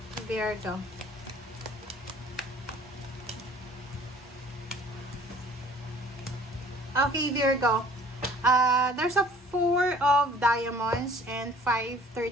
Virgo. Okay, Virgo. There's a 4 of diamonds and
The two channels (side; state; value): both; normal; correlation 0.52